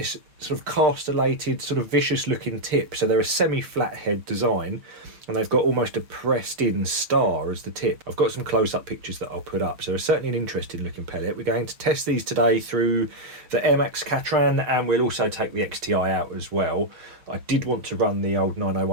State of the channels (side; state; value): left; late; 6.7 ms